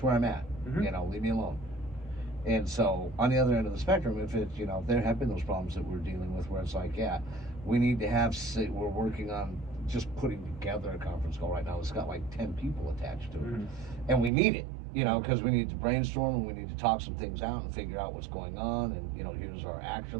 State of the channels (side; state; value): left; drops out; at 14.3 s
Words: where I'm at. Leave me alone. And so on the other end of the spectrum, if it's, there have been those problems that we're dealing with where it's like, yeah, we need to we're working on just putting together a conference call right now. It's got like 10 people attached to it. And we need it, because we need to brainstorm and we need to talk some things out and figure out what's going on. And, here's our